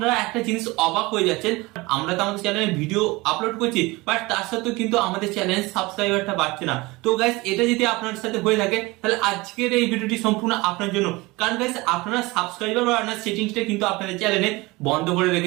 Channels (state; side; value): quieter; left; 22.5 dB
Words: একটা জিনিস অবাক হয়ে যাচ্ছেন, আমরা তো আমাদের চ্যানেলে ভিডিও আপলোড করছি, বাট তার সাথেও কিন্তু আমাদের চ্যানেলের সাবস্ক্রাইবারটা বাড়ছে না। তো গাইস এটা যদি আপনার সাথে হয়ে থাকে তাহলে আজকের এই ভিডিওটি সম্পূর্ণ আপনার জন্য, কারণ গাইস আপনারা সাবস্ক্রাইবার বাড়ানোর সেটিংসটা কিন্তু আপনাদের চ্যানেলে বন্ধ করে